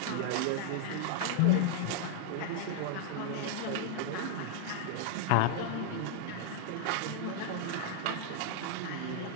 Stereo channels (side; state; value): both; different; correlation 0.00